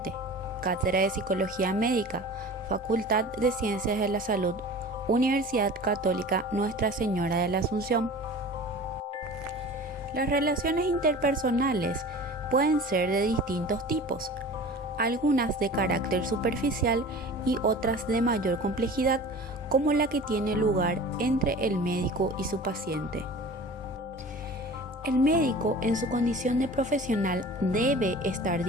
Cátedra de Psicología Médica, Facultad de Ciencias de la Salud, Universidad Católica Nuestra Señora de la Asunción. Las relaciones interpersonales pueden ser de distintos tipos, algunas de carácter superficial y otras de mayor complejidad, como la que tiene lugar entre el médico y su paciente. El médico, en su condición de profesional, debe estar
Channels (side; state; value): both; normal; correlation 0.39